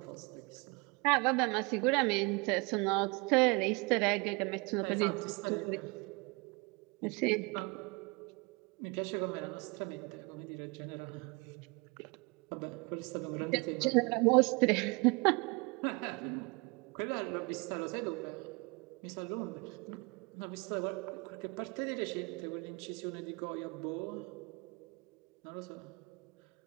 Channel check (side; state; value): left; quieter; 28.5 dB